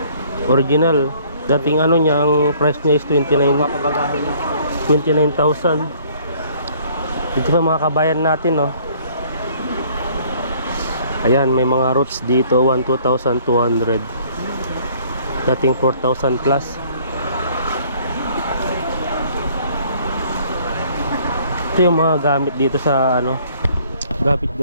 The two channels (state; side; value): inverted; both; correlation -0.58